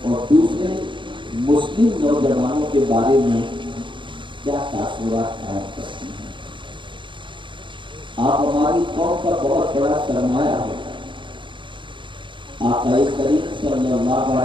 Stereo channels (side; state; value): left; late; 0.24 ms